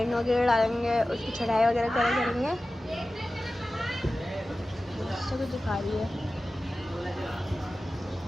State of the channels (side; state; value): both; normal; correlation 0.95